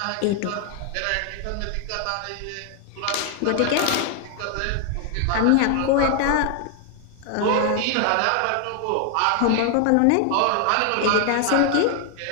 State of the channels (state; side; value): different; both; correlation 0.00